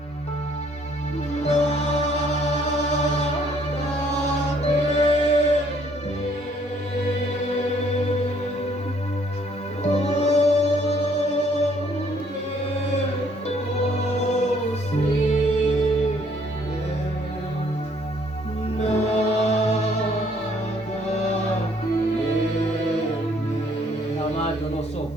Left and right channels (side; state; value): both; normal; correlation 0.63